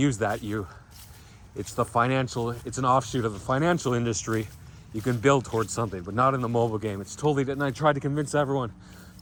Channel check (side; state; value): both; identical; correlation 1.00